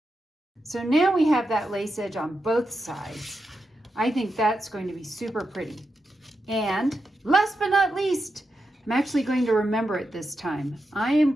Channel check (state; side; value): normal; both; correlation 0.87